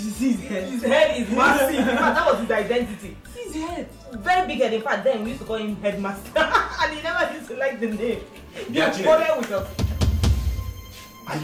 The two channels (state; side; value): identical; both; correlation 1.00